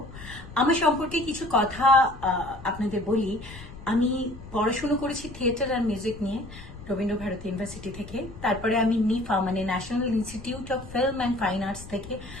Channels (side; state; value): left; noise; rumble, 15 dB below the sound